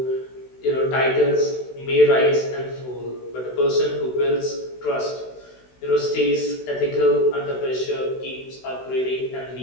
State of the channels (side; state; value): right; late; 16 ms